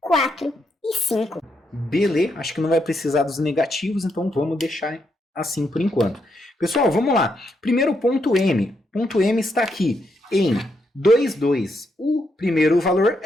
4 e 5. Beleza, acho que não vai precisar dos negativos, então vamos deixar assim por enquanto. Pessoal, vamos lá. Primeiro ponto M. Ponto M está aqui em 2, 2. O primeiro valor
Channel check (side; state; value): both; normal; correlation 0.79